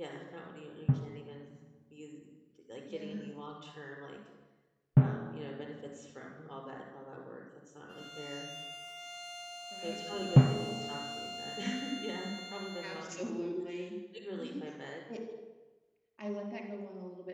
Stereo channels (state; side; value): identical; both; correlation 1.00